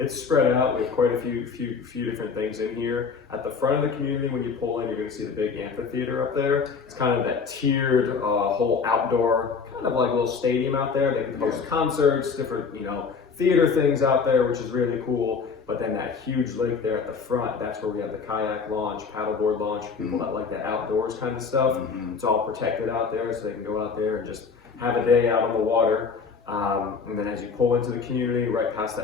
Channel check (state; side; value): quieter; right; 5.3 dB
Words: spread out. We have quite a few different things in here. At the front of the community, when you pull in, you're going to see the big amphitheater up there. It's kind of that tiered whole outdoor, kind of like a little stadium out there. They can host concerts, different theater things out there, which is really cool. But then that huge lake there at the front, that's where we have the kayak launch, paddleboard launch, people that like that outdoors kind of stuff. It's all protected out there, so they can go out there and just have a day out on the water. And then as you pull into the community, right past